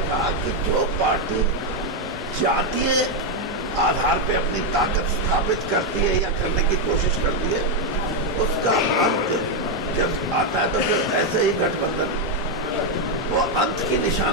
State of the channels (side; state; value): both; normal; correlation 0.03